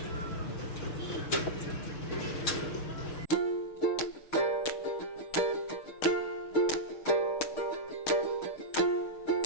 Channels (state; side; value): late; right; 6.5 ms